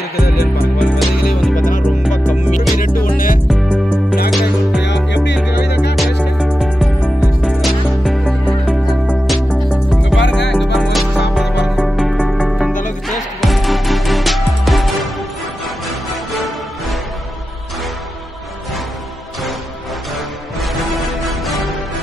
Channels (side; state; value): both; normal; correlation 0.92